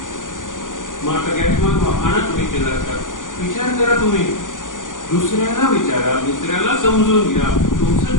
मग आता गॅस मग आणा तुम्ही केला असतात. विचार करा तुम्ही, दुसऱ्याला विचारा, दुसऱ्याला समजून घ्या, तुमचं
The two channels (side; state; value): right; late; 0.88 ms